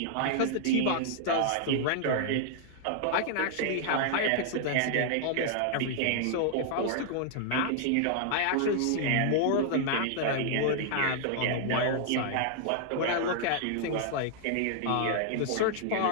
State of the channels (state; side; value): different; both; correlation -0.01